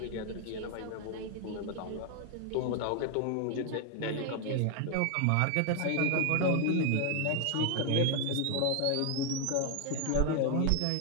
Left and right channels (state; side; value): different; both; correlation 0.01